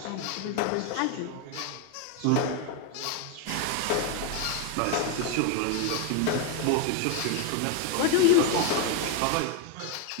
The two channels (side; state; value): both; different; correlation 0.01